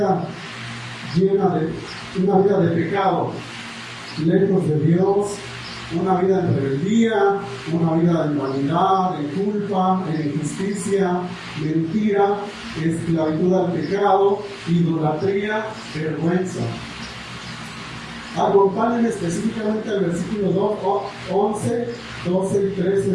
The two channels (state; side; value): identical; both; correlation 1.00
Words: una vida de pecado, lejos de Dios, una vida en rebeldía, una vida en vanidad, en culpa, en injusticia, mentira, esclavitud al pecado, idolatría, vergüenza. Acompáñenme específicamente al versículo 11, 12 y 13